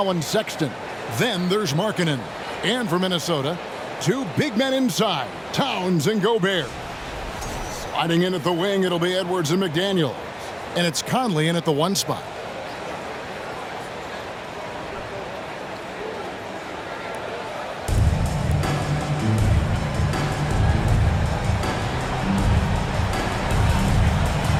Sexton. Then there's Markkanen. And for Minnesota, 2 big men inside, Towns and Gobert. Sliding in at the wing, it'll be Edwards and McDaniel. And it's Conley in at the 1 spot.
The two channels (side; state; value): both; identical; correlation 1.00